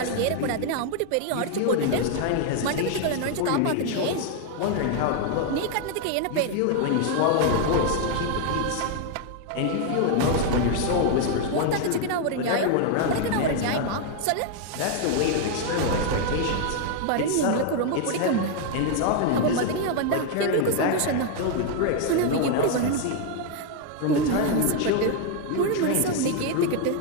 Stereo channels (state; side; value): different; both; correlation 0.00